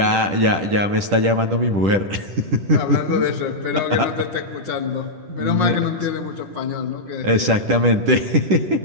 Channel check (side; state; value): left; late; 10 ms